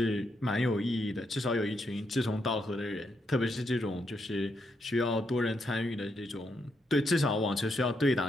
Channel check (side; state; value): both; normal; correlation 0.80